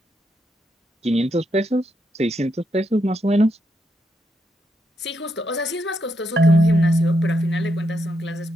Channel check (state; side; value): normal; both; correlation 0.81